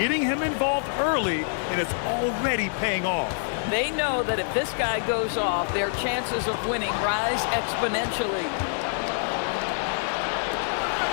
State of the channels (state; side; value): silent; right; digital silence